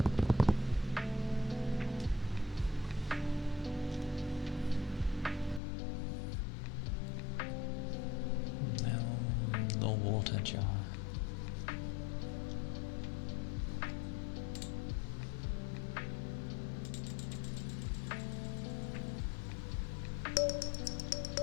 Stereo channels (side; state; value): right; drops out; at 5.6 s